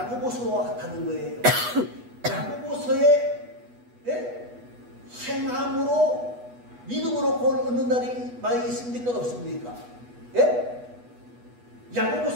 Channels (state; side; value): late; left; 8.2 ms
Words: 같다는 거예요. 야고보서에 믿음으로 구원을 얻는다는 말이 있습니까? 없습니까? 예?